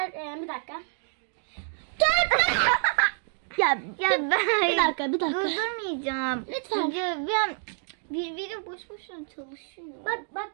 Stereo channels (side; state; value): left; silent; 60 dB below the other